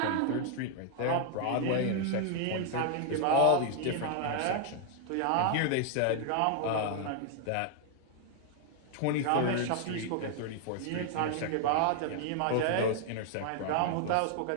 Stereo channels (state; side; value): different; both; correlation 0.00